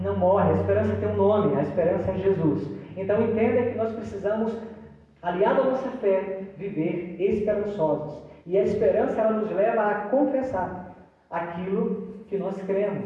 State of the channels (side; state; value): both; identical; correlation 1.00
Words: não morre. A esperança tem um nome. A esperança é Jesus. Então, entenda que nós precisamos, aliado à nossa fé, viver esperançosos. E a esperança, ela nos leva a confessar aquilo que nós